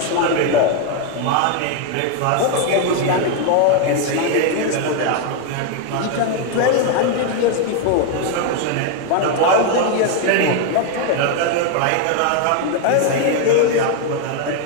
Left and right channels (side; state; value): both; different; correlation 0.01